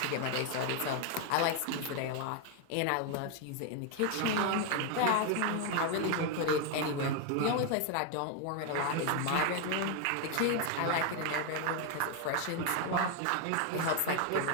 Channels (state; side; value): different; both; correlation 0.01